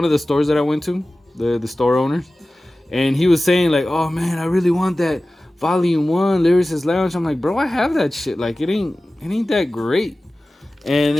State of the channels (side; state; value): both; normal; correlation 0.96